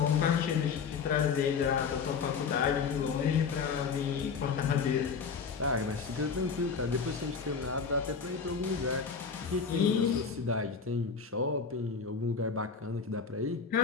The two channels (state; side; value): quieter; right; 5.7 dB